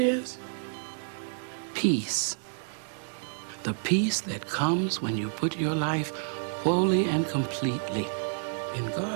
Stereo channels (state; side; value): silent; left; digital silence